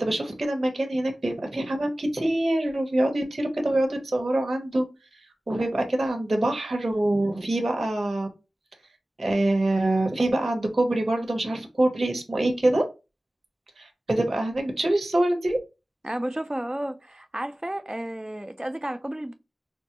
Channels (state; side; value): normal; both; correlation 0.97